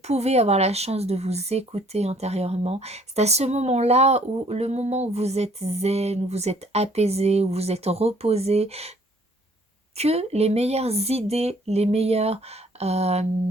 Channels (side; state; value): both; normal; correlation 0.60